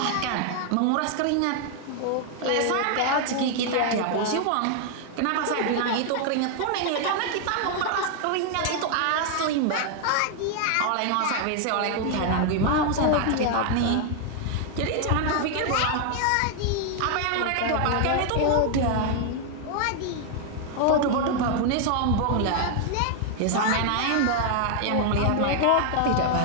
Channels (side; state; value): both; different; correlation 0.00